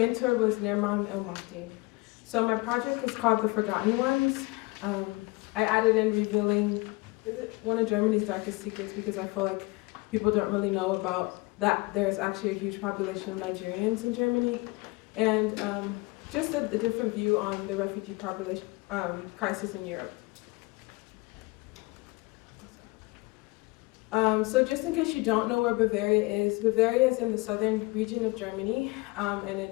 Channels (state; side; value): quieter; right; 24.6 dB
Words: was Nerman El-Mafti. So my project is called The Forgotten Ones. I added in revealing one of Germany's darkest secrets because I feel like people don't really know about that there's actually a huge population of Nigerians in Germany, and just a different view on the refugee population crisis in Europe. So just in case you don't know where Bavaria is in the southern region of Germany, and